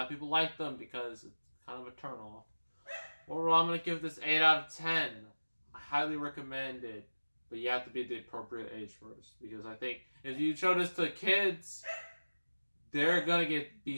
of people like them because it's kind of a turnoff. Overall, I'm going to give this 8 out of 10. I highly recommend it, but you have to be the appropriate age first, because I think if you show this to kids, they're going to be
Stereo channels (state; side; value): inverted; both; correlation -1.00